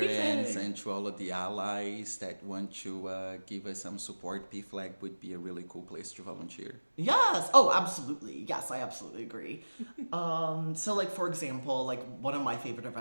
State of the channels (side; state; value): both; inverted; correlation -1.00